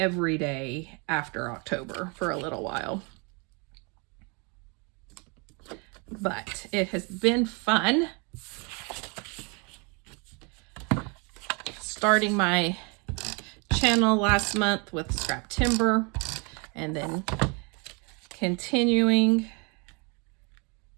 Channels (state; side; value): quieter; left; 32.1 dB